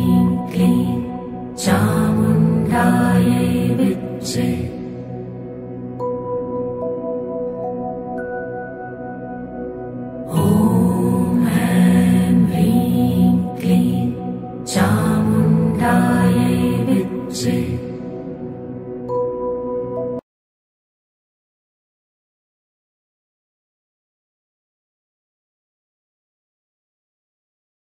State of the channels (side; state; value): both; identical; correlation 1.00